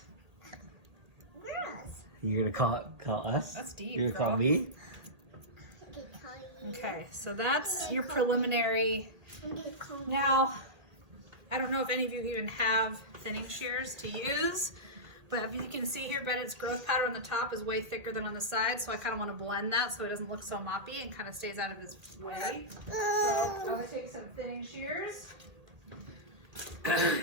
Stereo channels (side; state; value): left; late; 2.0 ms